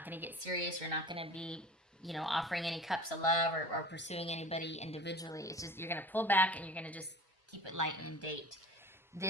going to get serious. You're not going to be, offering any cups of love or pursuing anybody individually. It's just, you're going to pull back and you're going to just keep it light and date.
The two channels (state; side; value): normal; both; correlation 0.41